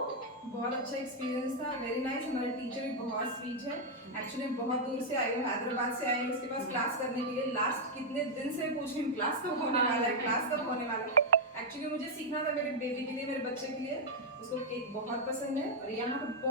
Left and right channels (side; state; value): both; normal; correlation -0.03